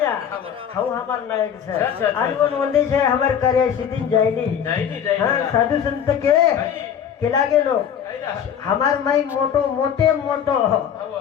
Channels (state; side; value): quieter; right; 8.5 dB